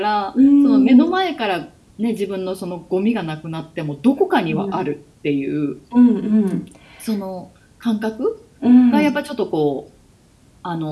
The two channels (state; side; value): identical; both; correlation 1.00